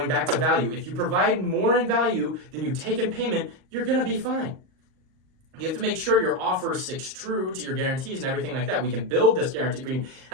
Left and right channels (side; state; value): left; late; 38 ms